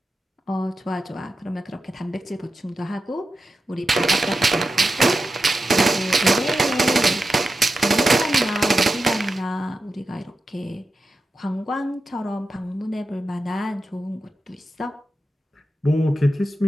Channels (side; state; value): both; normal; correlation 0.90